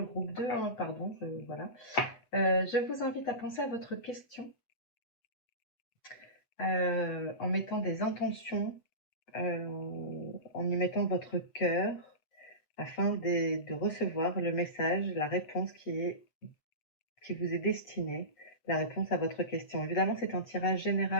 groupe 2, hein, pardon, voilà. Je vous invite à penser à votre question en mettant des intentions, en y mettant votre cœur, afin de recevoir le message, la réponse qui vous est destinée, la réponse à votre question. Évidemment, c'est un tirage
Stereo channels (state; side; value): late; right; 8.0 ms